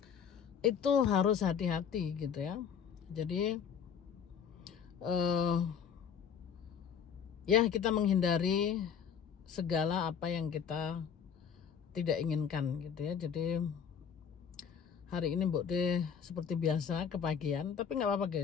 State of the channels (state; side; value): quieter; right; 7.5 dB